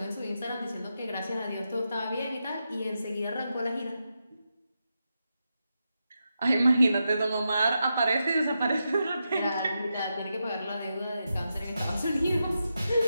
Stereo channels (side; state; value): both; inverted; correlation -0.87